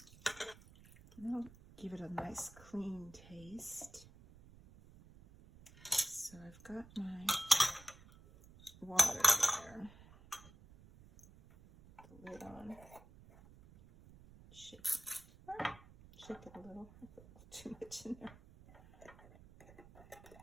And that'll give it a nice clean taste. So I've got my water there. Put the lid on. Shake it. Shake it a little. I put too much in there.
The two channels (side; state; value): right; noise; rumble, 21 dB below the sound